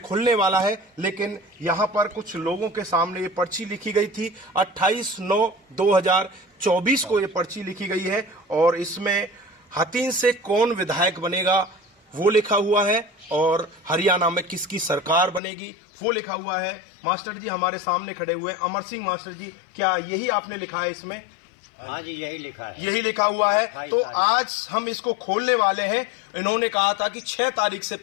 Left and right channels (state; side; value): drops out; right; at 15.4 s